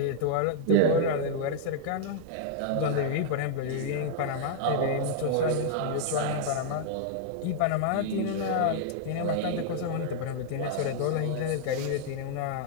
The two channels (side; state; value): both; different; correlation -0.01